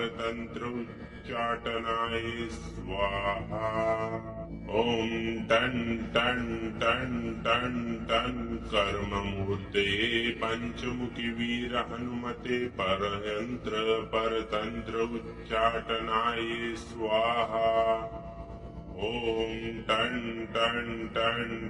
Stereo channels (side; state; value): both; identical; correlation 1.00